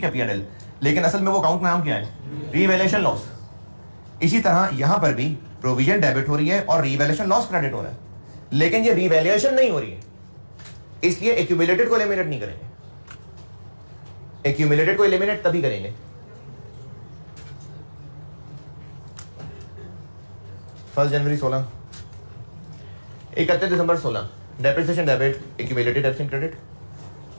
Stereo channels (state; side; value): inverted; both; correlation -1.00